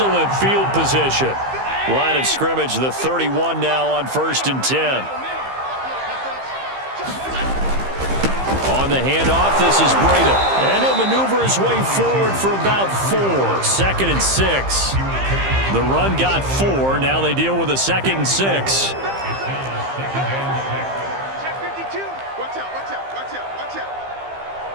field position. Line of scrimmage, the 31 now on 1st and 10. On the handoff, this is Breida. And he'll maneuver his way forward for about 4. 2nd and 6. The run got 4. Now they deal with a 2nd and 6.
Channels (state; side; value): late; left; 15 ms